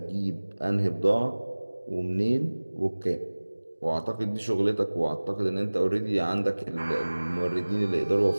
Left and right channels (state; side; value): inverted; both; correlation -1.00